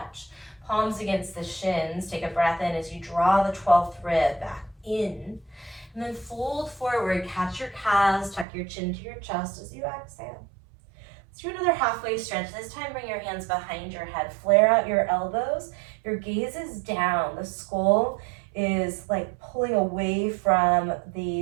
Palms against the shins. Take a breath in as you draw the 12th rib back in. And then fold forward. Catch your calves. Tuck your chin to your chest as you exhale. Let's do another halfway stretch. This time bring your hands behind your head. Flare out your elbows. Your gaze is down. The skull is like pulling away from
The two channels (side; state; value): left; drops out; at 8.5 s